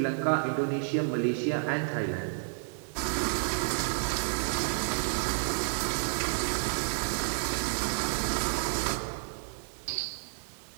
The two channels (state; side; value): silent; left; 57 dB below the other